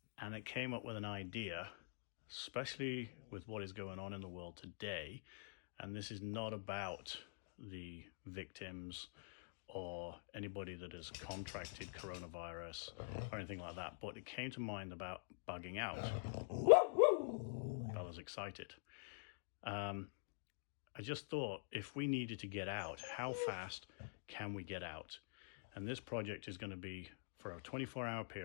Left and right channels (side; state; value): right; silent; digital silence